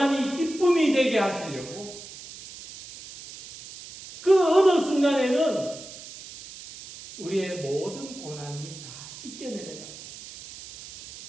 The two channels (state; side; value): noise; right; hiss, 15 dB below the sound